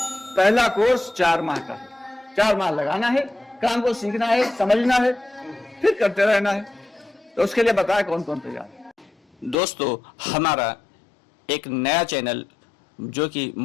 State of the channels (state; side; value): drops out; right; at 9.6 s